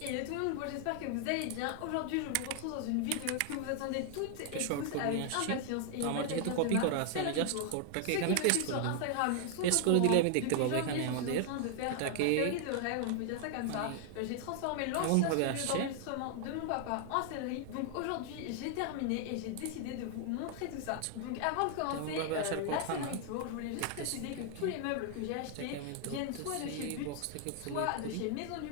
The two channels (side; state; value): both; different; correlation 0.00